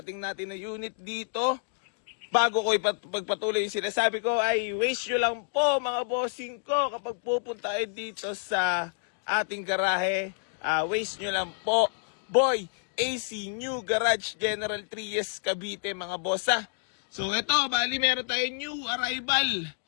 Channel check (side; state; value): right; silent; digital silence